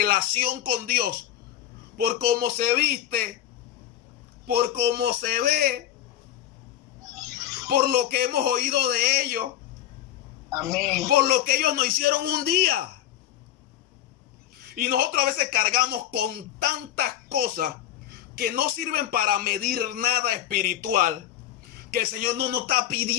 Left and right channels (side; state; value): right; quieter; 11.9 dB